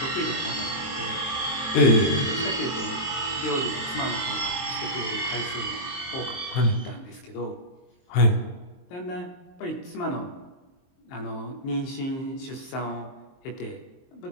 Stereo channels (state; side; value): late; right; 23 ms